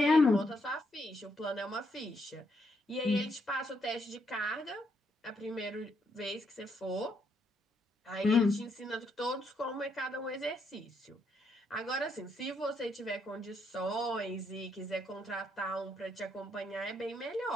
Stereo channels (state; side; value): normal; both; correlation 0.76